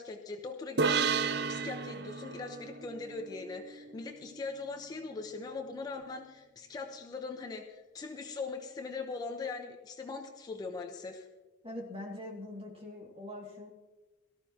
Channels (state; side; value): normal; both; correlation 0.18